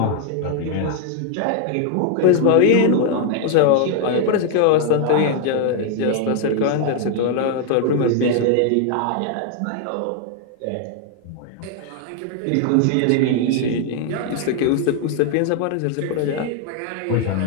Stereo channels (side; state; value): both; different; correlation 0.00